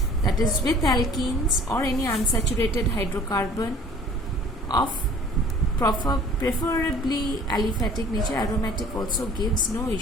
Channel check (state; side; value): normal; both; correlation 0.50